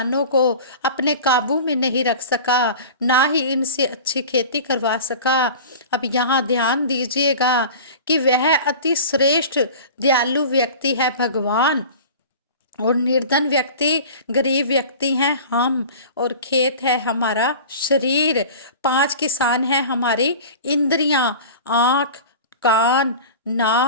को अपने काबू में नहीं रख सका, ना ही इनसे अच्छी खेती करवा सका। अब यहाँ ध्यान दीजिएगा कि वह अति श्रेष्ठ दयालु व्यक्ति है भगवान और निर्धन व्यक्ति, गरीब व्यक्ति हैं हम, और खेत है हमारा शरीर। 5 किसान हैं हमारी इंद्रियां, आँख, कान,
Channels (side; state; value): both; inverted; correlation -0.37